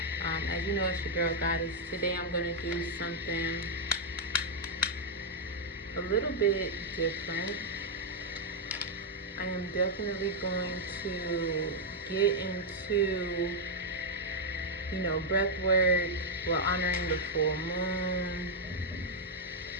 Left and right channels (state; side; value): normal; both; correlation -0.03